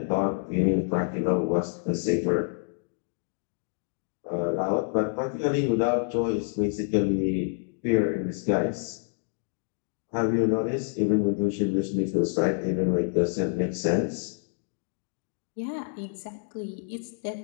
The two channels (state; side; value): silent; right; digital silence